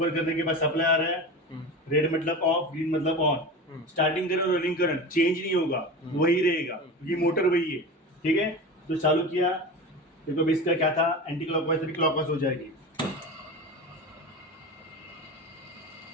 करने के बाद सप्लाई आ रहा है, रेड मतलब ऑफ, ग्रीन मतलब ऑन। स्टार्टिंग करंट और रनिंग करंट चेंज नहीं होगा, वही रहेगा क्योंकि मोटर वही है, ठीक है। तो चालू किया, देखो इसका क्या था, एंटी क्लॉकवाइज से क्लॉकवाइज हो जाएगी,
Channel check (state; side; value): normal; both; correlation 0.28